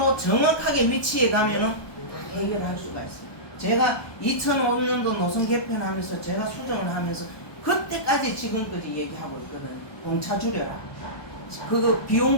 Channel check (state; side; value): late; right; 1.2 ms